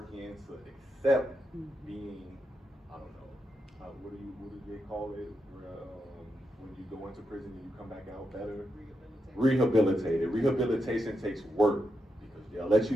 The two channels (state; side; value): normal; both; correlation 0.84